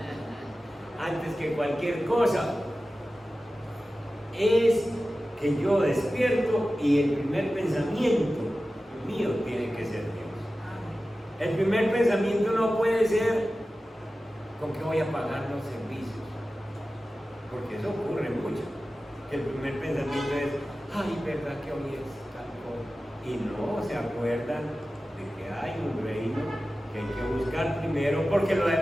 antes que cualquier cosa. Es que yo despierto y el primer pensamiento mío tiene que ser Dios. El primer pensamiento no puede ser con qué voy a pagar los servicios, porque eso ocurre mucho. El primer pensamiento es, ay, verdad que hoy es tal cosa, y no se acuerdan de que hay un reino que hay que buscar primero, porque lo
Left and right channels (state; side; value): normal; both; correlation 0.95